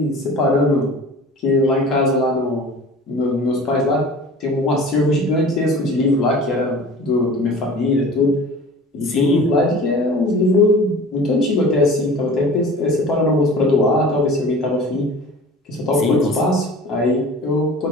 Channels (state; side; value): normal; both; correlation 0.41